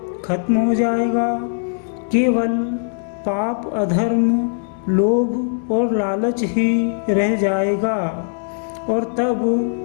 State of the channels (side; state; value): right; silent; digital silence